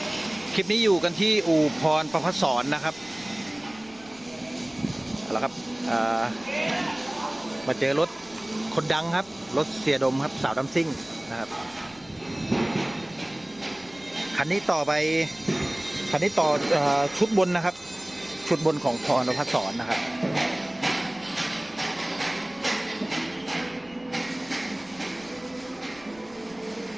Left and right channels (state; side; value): noise; left; rumble, 25 dB below the sound